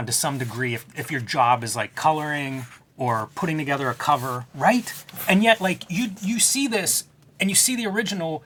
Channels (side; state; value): both; identical; correlation 1.00